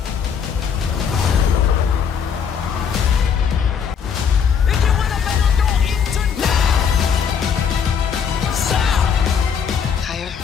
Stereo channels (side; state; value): right; quieter; 7.1 dB